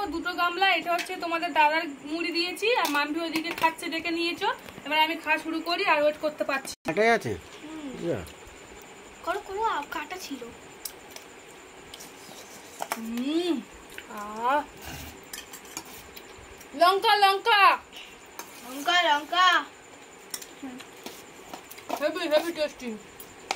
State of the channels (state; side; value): identical; both; correlation 1.00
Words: 2টো গামলা, এটা হচ্ছে তোমাদের দাদার মুড়ি দিয়েছি, আর মাম্পি ওইদিকে খাচ্ছে ডেকে নিয়েছো। এবার আমি খাওয়া শুরু করি, আর ওয়েট করতে পারছি। কাটাই আছে, করো করো, কাটা ছিল। লঙ্কা লঙ্কা লঙ্কা লঙ্কা, হেভি হেভি টেস্টি।